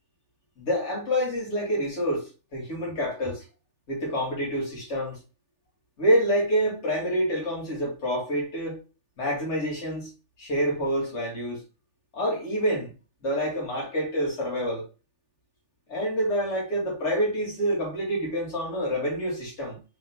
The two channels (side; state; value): right; late; 3.4 ms